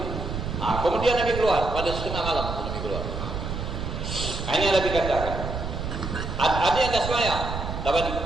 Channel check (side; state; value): right; noise; rumble, 5 dB below the sound